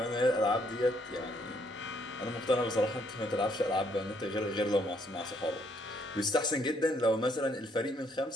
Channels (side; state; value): both; normal; correlation 0.69